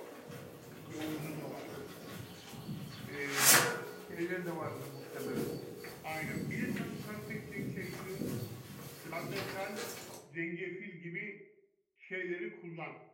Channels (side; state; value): both; identical; correlation 1.00